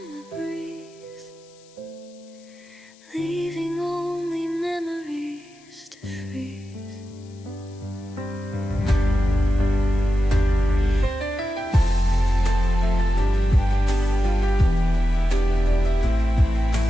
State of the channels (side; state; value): left; noise; hiss, 29 dB below the sound